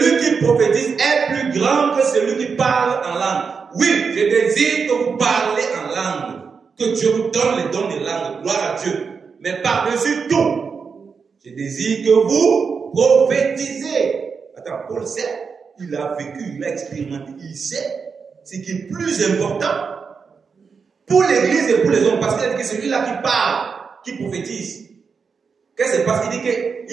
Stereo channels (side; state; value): left; quieter; 5.6 dB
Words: qui prophétise est plus grand que celui qui parle en langue. Oui, je désire que vous parlez en langue, que Dieu vous donne les dons de langue, gloire à Dieu. Mais par-dessus tout, je désire que vous prophétisez. Attends, Paul sait, il a vécu, il a expérimenté, il sait ce qui est plus important pour l'église et pour les hommes, parce qu'il a dit que celui-là qui parle, qui prophétise, qu'est-ce qui se passe? Il dit